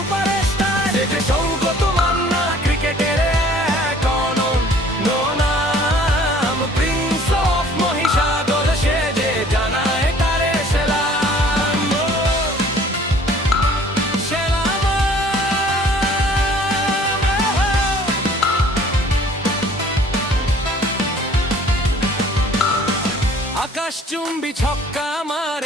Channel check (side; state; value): both; normal; correlation 0.54